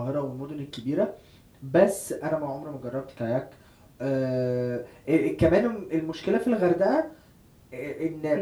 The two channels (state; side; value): identical; both; correlation 1.00